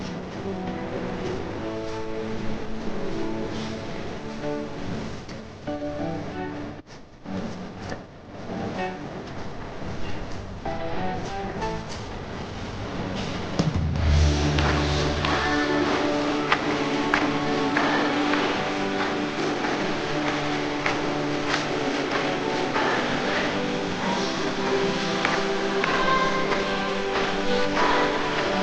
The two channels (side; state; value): both; identical; correlation 1.00